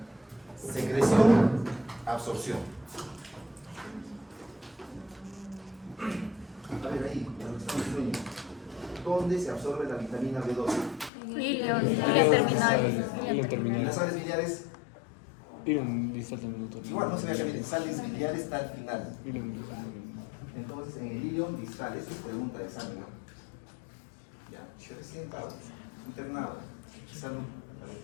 Secreción, absorción. A ver ahí, ¿dónde se absorbe la vitamina B12? Ilion Ilion terminal. Las sales biliares, Ilion distal también, doctor. igual no se vea que miren, sales biliares está al final. Ilion distal. Entonces, en el ilion distal, eso es pregunta de examen, ¿no? Ya, yo recién estaba internado, salud al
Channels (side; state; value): right; drops out; at 11.1 s